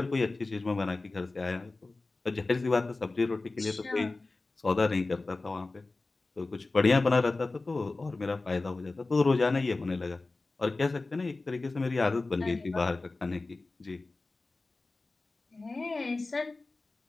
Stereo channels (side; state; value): right; quieter; 3.4 dB